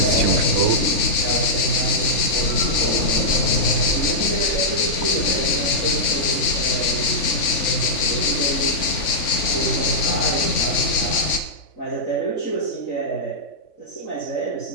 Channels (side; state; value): right; late; 3.5 ms